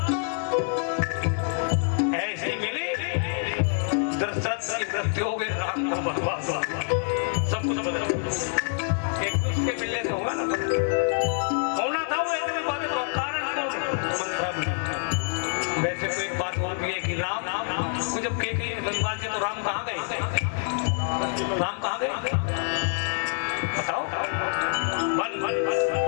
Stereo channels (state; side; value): silent; right; 61 dB below the other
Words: ऐसे मिली दशरथ की मृत्यु हो गई, राम को बर्बाद हुआ, सब कुछ बदल गया। एक दूसरे मिलने से होगा ना, होना था वो ऐसे बात का कारण कौन? मंथरा मिला। वैसे तो एक बात और भी है कि राम को जब कैकेयी बनवा दिया तो राम कहाँ गए? राम कहाँ गए बताओ?